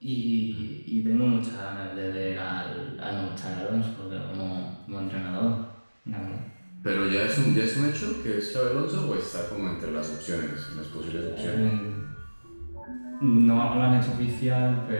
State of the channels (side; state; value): both; inverted; correlation -1.00